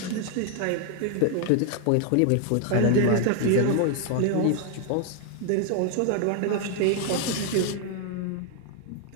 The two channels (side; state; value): both; different; correlation 0.00